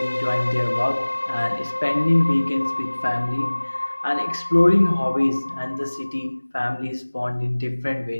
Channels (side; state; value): both; inverted; correlation -1.00